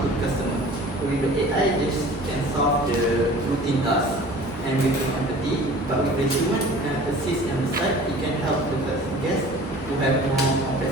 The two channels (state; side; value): normal; both; correlation 0.44